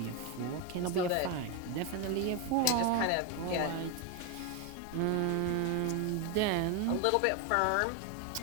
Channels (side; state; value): both; different; correlation 0.02